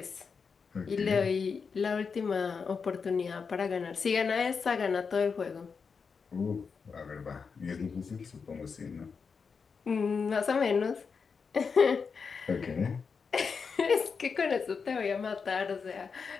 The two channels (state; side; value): quieter; right; 5.5 dB